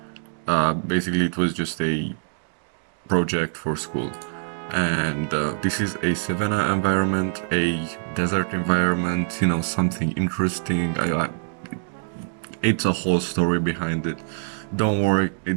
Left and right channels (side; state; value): left; silent; digital silence